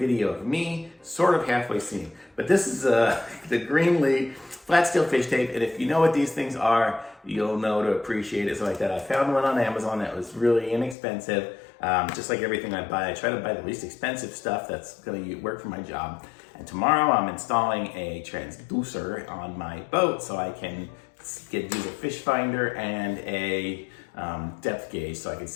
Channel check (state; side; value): drops out; right; at 11.0 s